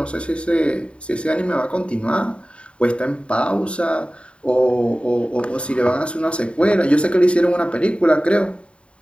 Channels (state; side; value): late; right; 0.058 ms